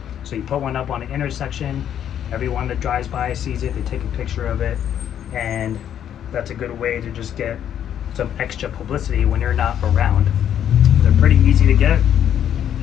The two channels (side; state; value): right; quieter; 9.8 dB